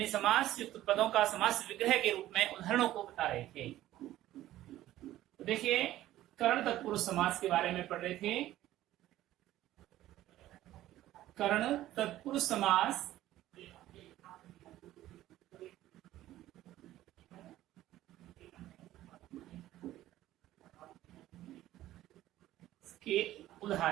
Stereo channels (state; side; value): quieter; left; 14.4 dB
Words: समास युक्त पदों का समास विग्रह के रूप में उदाहरणों को बता रहे थे। तो देखिए, कर्ण तत्पुरुष समास के बारे में पढ़ रहे थे। कर्ण तत्पुरुष समास के